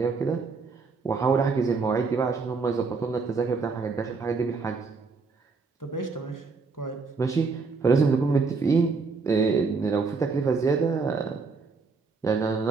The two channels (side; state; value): left; quieter; 4.5 dB